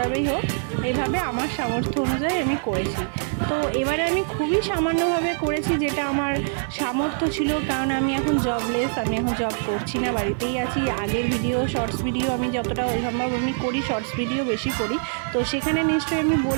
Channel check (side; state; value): left; silent; 58 dB below the other